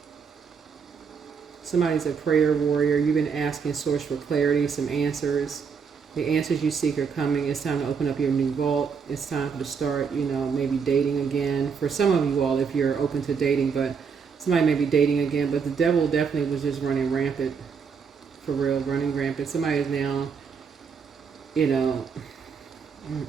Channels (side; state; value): left; quieter; 6.1 dB